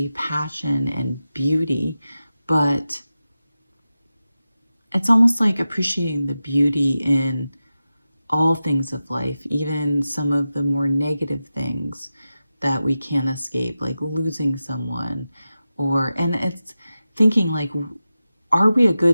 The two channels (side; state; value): both; inverted; correlation -0.93